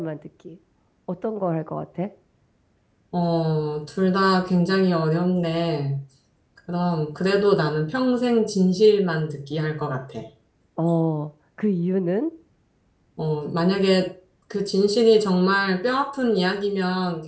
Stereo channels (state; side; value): identical; both; correlation 1.00